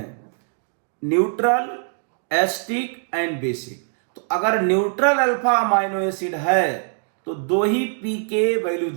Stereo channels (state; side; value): silent; left; 56 dB below the other